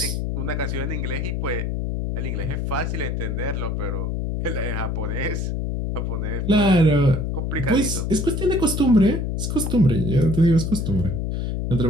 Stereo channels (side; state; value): left; noise; hum, 1 dB below the sound